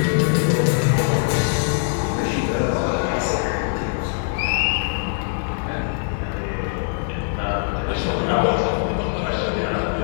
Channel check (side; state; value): right; silent; digital silence